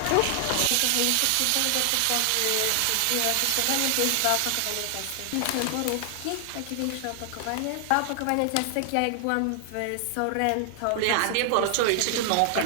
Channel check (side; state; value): both; different; correlation 0.00